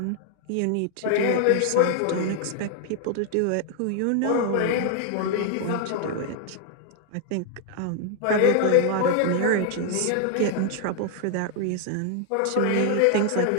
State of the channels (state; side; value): different; both; correlation 0.00